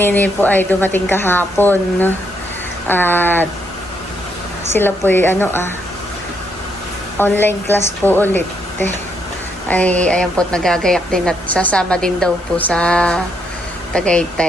po ay dumating kahapon. At sila po ay online class po ulit. Ay ayan po nagagayak din at sasama din daw po sa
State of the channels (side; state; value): both; normal; correlation 0.75